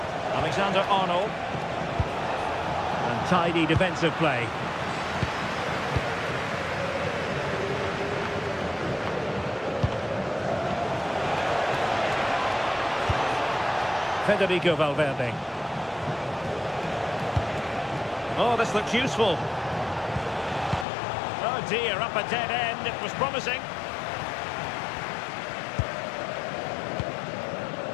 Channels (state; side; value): drops out; right; at 20.9 s